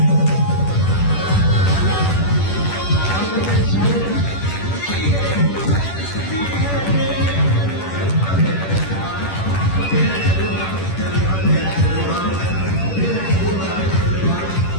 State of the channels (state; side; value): late; right; 10 ms